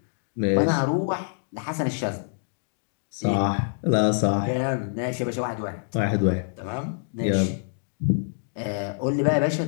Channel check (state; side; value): silent; right; digital silence